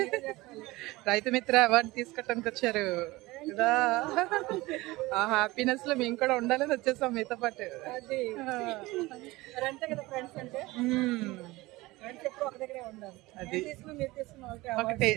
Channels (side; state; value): left; quieter; 20.5 dB